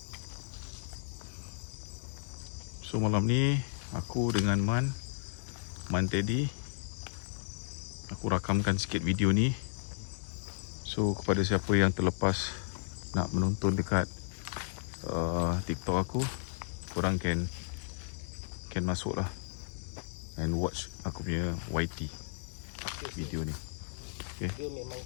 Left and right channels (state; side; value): silent; right; digital silence